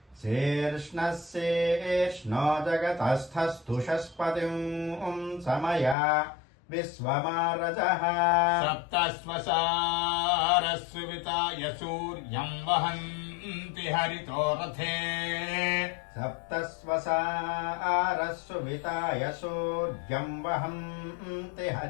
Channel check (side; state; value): right; drops out; at 6.0 s